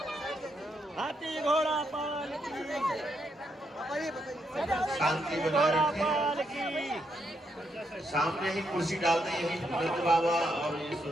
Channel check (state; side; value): normal; both; correlation 0.79